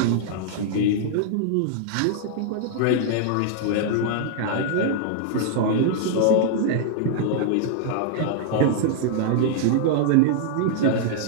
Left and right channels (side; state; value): both; different; correlation -0.01